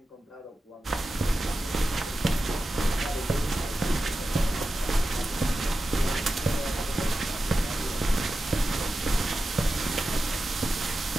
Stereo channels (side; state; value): both; normal; correlation 0.92